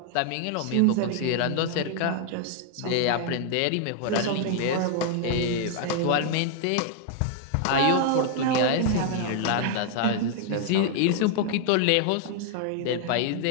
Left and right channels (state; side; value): different; both; correlation 0.00